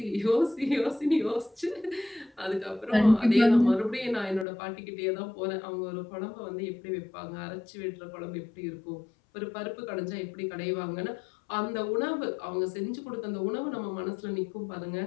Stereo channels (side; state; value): right; drops out; at 4.5 s